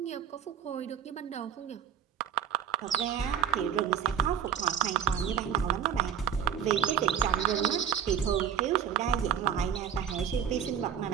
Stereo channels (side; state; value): left; quieter; 8.8 dB